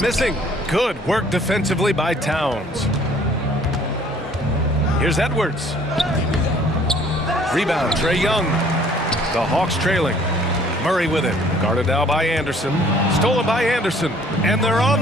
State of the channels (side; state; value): both; normal; correlation 0.57